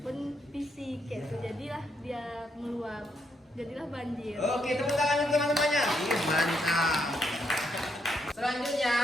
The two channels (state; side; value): normal; both; correlation 0.77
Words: fisik kayak itu, jadilah dia meluap, jadilah banjir. Oke, tepuk tangan untuk teman-temannya. Mantap. Selanjutnya,